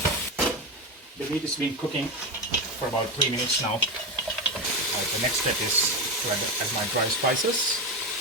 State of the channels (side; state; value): both; normal; correlation 0.15